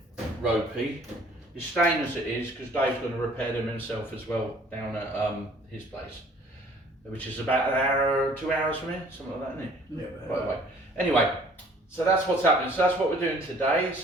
ropey, is staying as it is because Dave's going to repair them himself as well down at his place, which is about an hour, 2 hours from here, something like that, isn't it? Yeah. By the way. Anyway, so that's what's happening. So that's what we're doing today.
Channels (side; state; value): both; normal; correlation 0.55